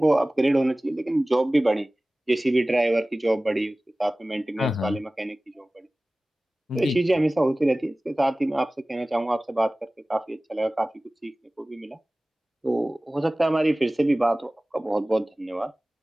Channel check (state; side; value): normal; both; correlation 0.98